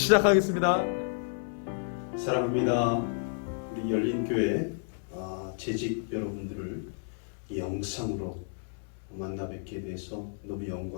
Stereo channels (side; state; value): right; silent; 57 dB below the other